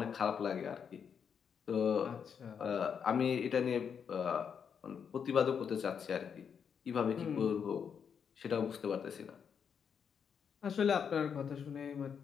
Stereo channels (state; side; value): quieter; right; 7.1 dB